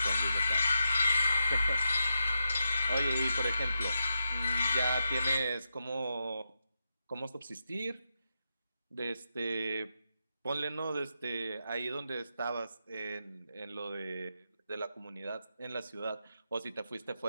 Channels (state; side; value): inverted; both; correlation -0.87